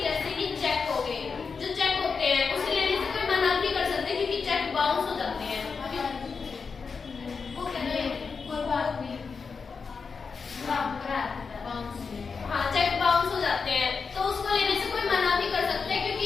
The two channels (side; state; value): right; quieter; 5.2 dB